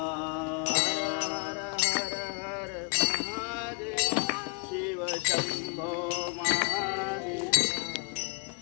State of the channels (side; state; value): right; quieter; 37.7 dB